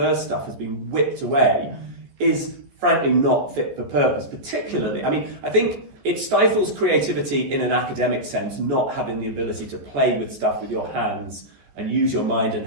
stuff has been whipped away, is frankly not fit for purpose. Particularly, I think it stifles creativity in an academic sense, not having the ability to play with stuff with your hands and use your mind and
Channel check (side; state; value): left; late; 14 ms